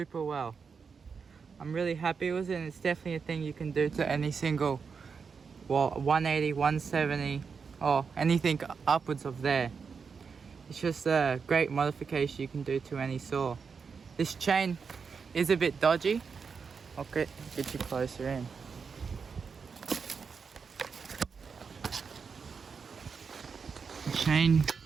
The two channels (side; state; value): left; quieter; 5.6 dB